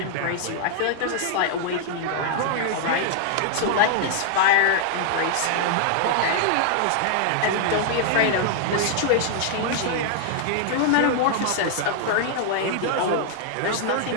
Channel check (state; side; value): different; both; correlation -0.01